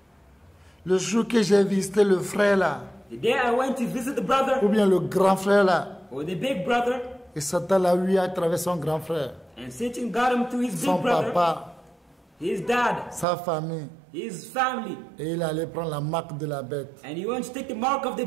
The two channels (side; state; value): left; drops out; at 13.2 s